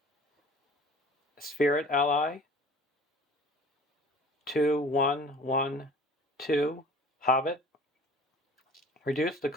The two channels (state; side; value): normal; both; correlation 0.46